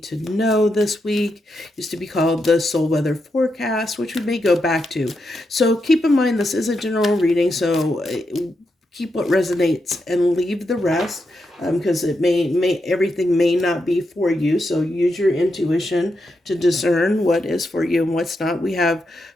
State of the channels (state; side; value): normal; both; correlation 0.84